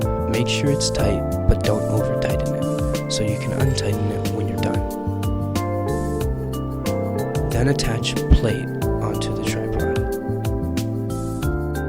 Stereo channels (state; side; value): identical; both; correlation 1.00